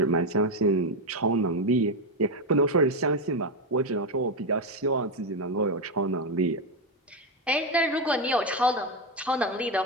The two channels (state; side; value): normal; both; correlation 0.08